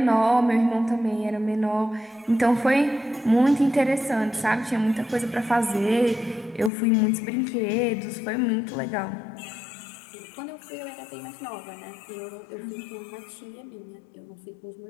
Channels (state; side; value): drops out; right; at 6.7 s